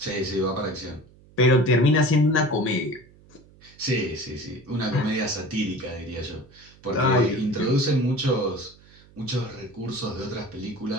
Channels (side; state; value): right; noise; hum, 26 dB below the sound